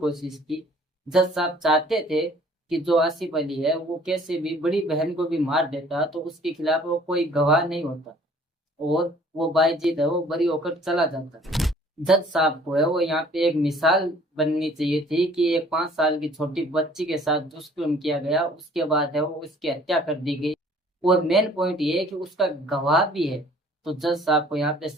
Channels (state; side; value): normal; both; correlation 0.54